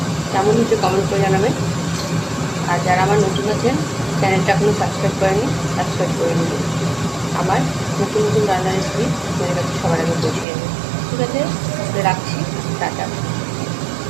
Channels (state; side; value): drops out; left; at 10.5 s